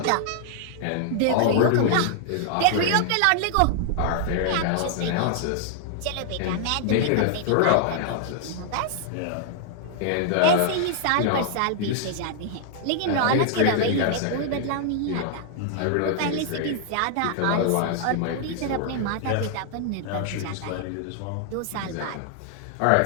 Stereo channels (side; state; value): both; different; correlation 0.00